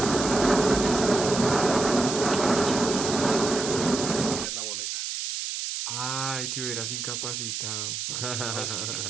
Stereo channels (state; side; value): noise; right; hiss, 4 dB below the sound